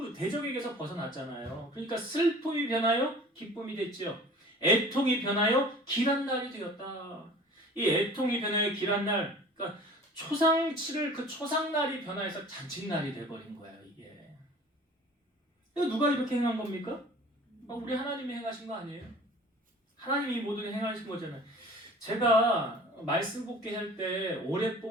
대적에게서 벗어났잖아요. 그러니까 슬픔이 변하여 기쁨이 됐죠. 애통이 변하여 길한 날이 되었다. 이 애통이 변하여 길한 날, 그러니까 초상치를 그 초상날이 변화해서 잔칫날이 돼버린 거예요. 이게. 이거 누가 이렇게 행한 겁니까? 우리 하나님이 행하신 거 아니에요? 하나님이 모든 행하신 거잖아요. 제가 말씀 뽑기 할 때 올해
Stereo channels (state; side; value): normal; both; correlation 0.45